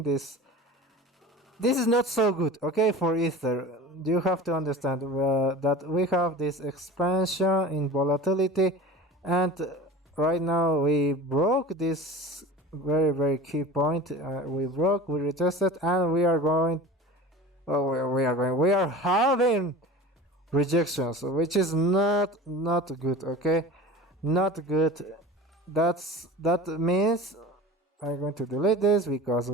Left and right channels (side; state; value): both; normal; correlation 0.36